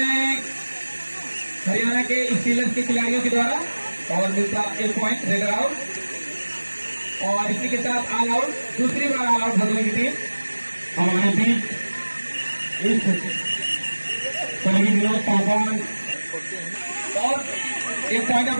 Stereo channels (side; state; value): both; inverted; correlation -1.00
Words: हैं हरियाणा के स्टीलर्स के खिलाड़ियों के द्वारा और मिलता 1 पॉइंट रेडर आउट और इसी के साथ ऑल आउट, दूसरी बार ऑल आउट भदोही की टीम। हमारे बीच इस सहयोगी विनोद पासवान और 1 पॉइंट